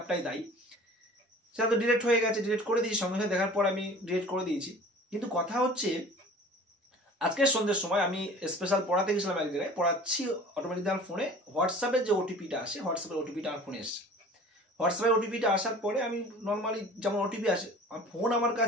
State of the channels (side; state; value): both; normal; correlation 0.44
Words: দায়ী। সেটা তো ডিলিট হয়ে গেছে, ডিলিট করে দিয়েছি, সঙ্গে সঙ্গে দেখার পর আমি ডিলিট করে দিয়েছি। কিন্তু কথা হচ্ছে, আজকের সন্ধ্যের সময় আমি স্পেশাল পড়াতে গেছিলাম এক জায়গায়, পড়াচ্ছি, অটোমেটিক আমার ফোনে হোয়াটসঅ্যাপের যে ওটিপিটা আসে, হোয়াটসঅ্যাপের ওটিপিটা আমার ফোনে এসছে। হোয়াটসঅ্যাপের ওটিপিটা আসার পরে আমি নর্মালি যেমন ওটিপি আসে, ফোন আমার